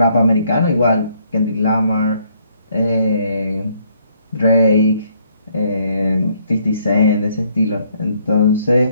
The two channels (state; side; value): inverted; both; correlation -0.68